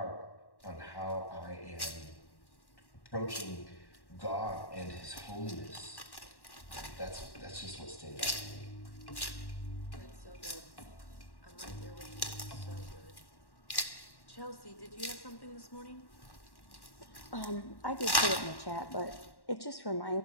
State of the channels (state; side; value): late; right; 1.1 ms